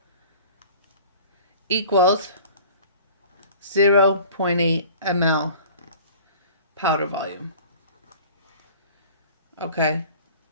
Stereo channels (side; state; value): both; inverted; correlation -0.45